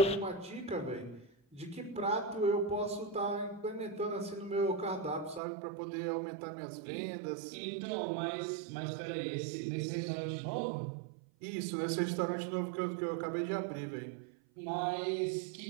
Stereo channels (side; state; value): left; drops out; at 5.4 s